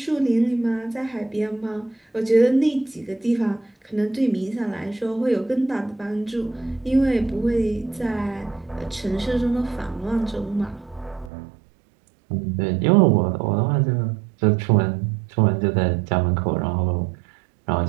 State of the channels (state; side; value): drops out; left; at 11.3 s